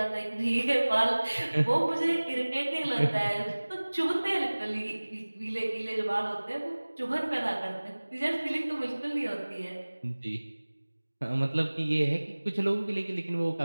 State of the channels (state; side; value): inverted; both; correlation -1.00